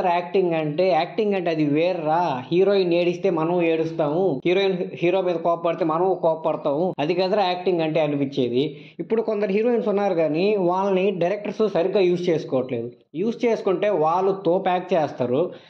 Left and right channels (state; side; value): identical; both; correlation 1.00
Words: యాక్టింగ్ అంటే. యాక్టింగ్ అంటే అది వేర్రా. హీరోయిన్ ఏడిస్తే మనం ఏడుస్తాము, హీరో మీద కోపడితే మనం కోపడతాము, అది కదరా యాక్టింగ్ అంటే అనిపించేది. ఇప్పుడు కొందరు హీరోయిన్స్ ఉన్నారు కానీ వాళ్ళని డైరెక్టర్స్ సరిగ్గా యూజ్ చేసుకోవట్లేదు. యూజ్ చేసుకుంటే వాళ్ళు తోపు యాక్ట్ చేస్తారు,